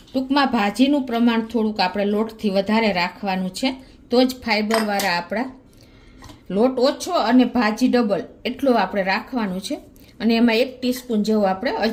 ટૂંકમાં ભાજીનું પ્રમાણ થોડુંક આપણે લોટથી વધારે રાખવાનું છે, તો જ ફાઈબરવાળા આપણા લોટ ઓછો અને ભાજી ડબલ એટલું આપણે રાખવાનું છે. અને એમાં 1 ટીસ્પૂન જેવો આપણે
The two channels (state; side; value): identical; both; correlation 1.00